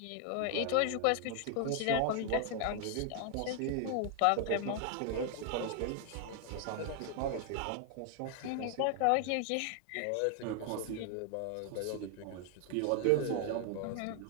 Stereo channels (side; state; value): both; different; correlation 0.00